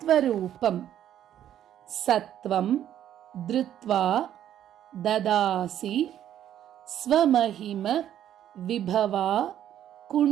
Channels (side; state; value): left; quieter; 10.9 dB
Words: சத்வம் திருத்வா ததாசி ஸ்வமஹிம விபவா